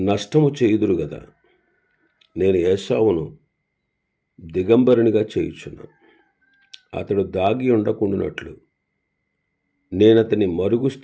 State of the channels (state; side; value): identical; both; correlation 1.00